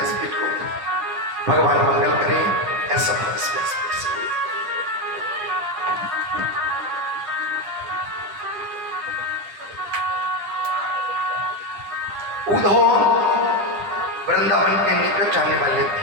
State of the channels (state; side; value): late; left; 10 ms